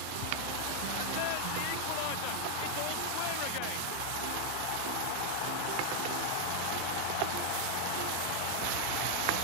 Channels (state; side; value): different; both; correlation 0.00